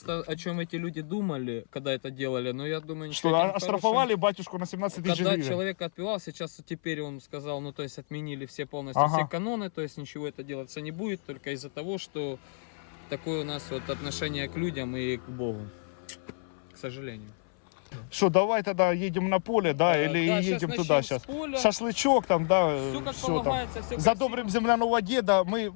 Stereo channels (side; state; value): right; silent; 56 dB below the other